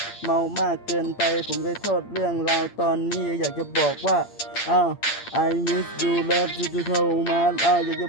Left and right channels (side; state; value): right; late; 8.7 ms